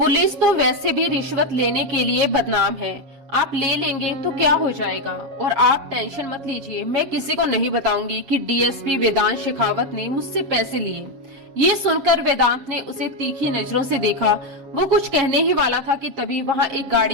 तो वैसे भी रिश्वत लेने के लिए बदनाम है। आप ले लेंगे तो क्या हो जाएगा? और आप टेंशन मत लीजिए, मैं किसी को नहीं बताऊंगी कि डीएसपी वेदांत शेखावत ने मुझसे पैसे लिए। ये सुनकर वेदांत ने उसे तीखी नजरों से देखा। वो कुछ कहने ही वाला था कि तभी वहां एक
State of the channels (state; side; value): late; left; 7.4 ms